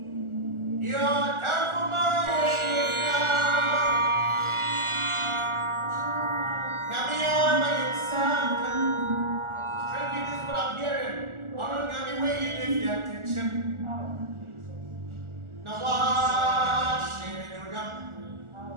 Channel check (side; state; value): left; late; 1.4 ms